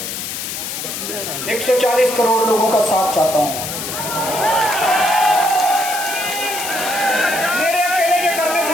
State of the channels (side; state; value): left; noise; hiss, 6 dB below the sound